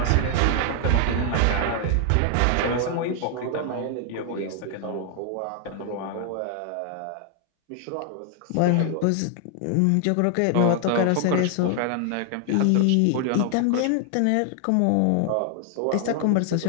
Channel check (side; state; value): both; different; correlation 0.00